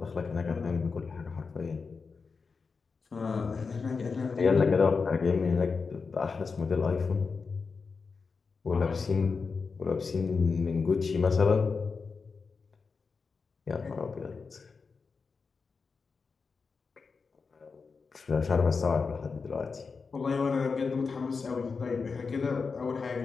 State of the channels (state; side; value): quieter; right; 4.9 dB